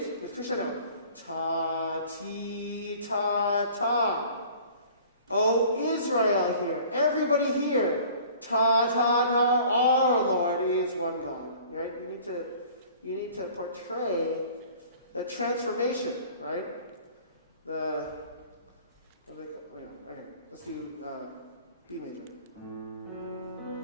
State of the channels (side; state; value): both; inverted; correlation -0.49